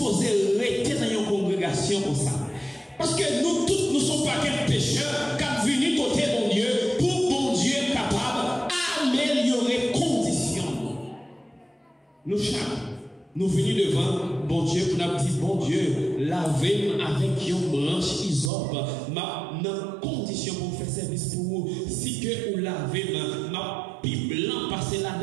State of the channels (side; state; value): left; drops out; at 18.5 s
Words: rester dans une congrégation comme ça. Parce que nous tous, nous ne sommes pas quels pécheurs, qui venus côté mon Dieu, pour mon Dieu capable d'améliorer les conditions. Nous chaque. Nous venons devant bon Dieu pour nous dire bon Dieu, lavez-moi avec une branche isope, dans condition pour faire service pour vous. Si que vous lavez ma pipe blanc passer